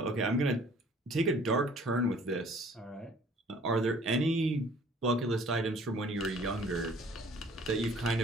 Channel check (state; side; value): normal; both; correlation 0.54